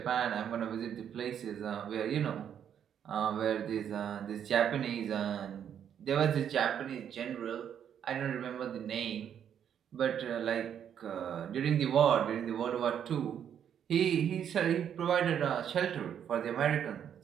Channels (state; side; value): quieter; left; 8.9 dB